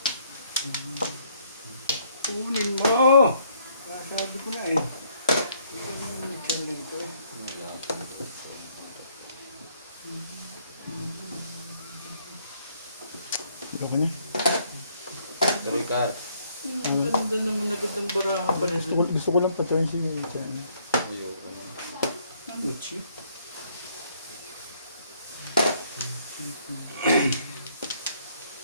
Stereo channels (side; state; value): both; inverted; correlation -0.67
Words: Kunin mo! Sabi ko na eh. Ikaw kanya. Sorry, Car. Ang ganda naman agad ng barahan pa rin. Gusto ko lang patayin si Chan. Ayoko na. Ano, Chi?